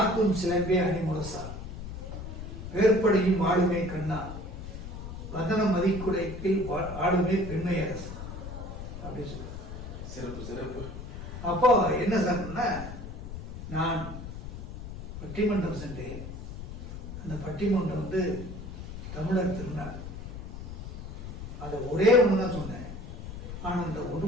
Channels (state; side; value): noise; left; rumble, 9 dB below the sound